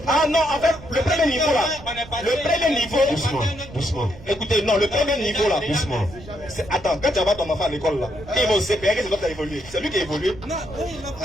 Ah non, en fait, le premier niveau là. Le premier niveau. Doucement, doucement. Écoutez, non, le premier niveau là. Doucement. Attends, quand tu vas ton enfant à l'école là, il va au CPR, c'est toi qui as évolué. C'est lui qui a évolué.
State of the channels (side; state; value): right; noise; rumble, 17 dB below the sound